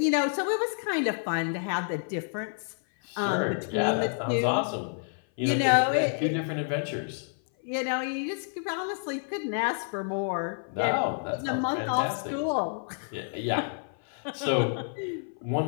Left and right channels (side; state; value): right; silent; 57 dB below the other